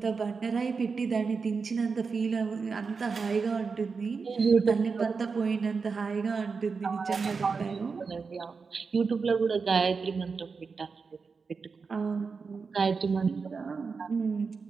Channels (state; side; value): quieter; left; 5.0 dB